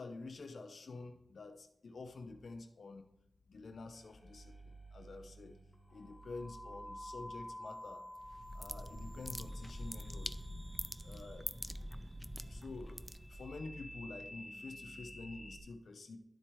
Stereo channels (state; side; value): normal; both; correlation 0.96